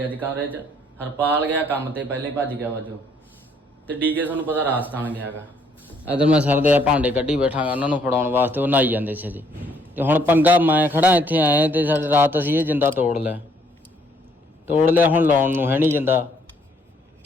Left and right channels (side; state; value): both; normal; correlation 0.67